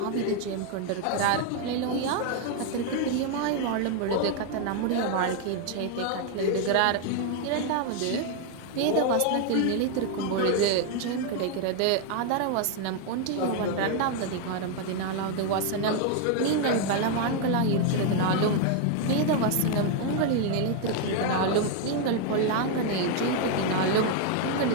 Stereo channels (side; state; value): both; different; correlation 0.00